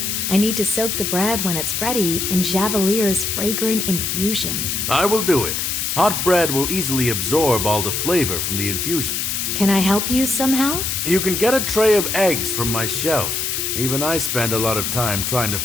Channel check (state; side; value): noise; left; hiss, 1 dB below the sound